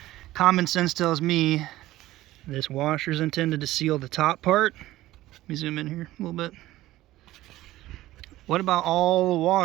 Common sense tells me this washer is intended to seal the top part. Let me zoom in here a little bit. What about all the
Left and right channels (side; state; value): left; quieter; 16.1 dB